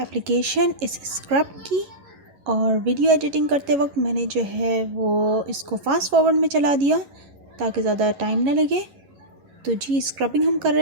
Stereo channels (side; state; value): left; late; 11 ms